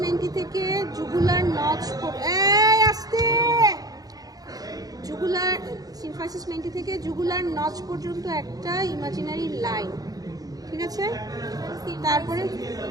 menti থেকে জুগুলার নচ, আসতে জুগুলার সিম্ফাইসিস মেন্টি থেকে জুগুলার নচ পর্যন্ত একটা ইমাজিনারি লাইন, ঠিক আছে। তারপরে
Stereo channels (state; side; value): late; left; 0.18 ms